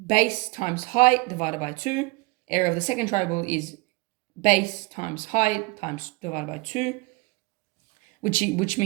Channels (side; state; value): left; quieter; 24.8 dB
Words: base times height divided by 2. area of the second triangle is base times height times divided by 2, which